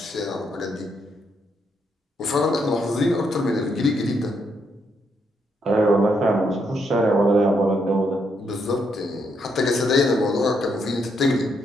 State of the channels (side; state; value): both; normal; correlation 0.77